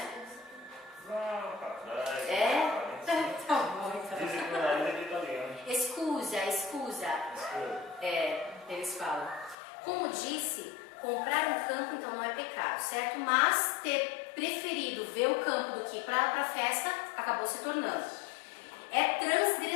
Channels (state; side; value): drops out; right; at 9.6 s